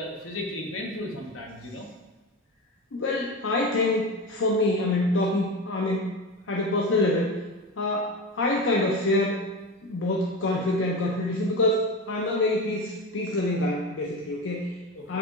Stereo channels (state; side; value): normal; both; correlation 0.25